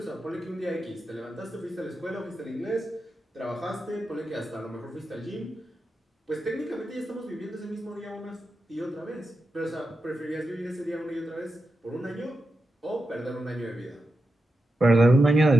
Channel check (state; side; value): normal; both; correlation 0.89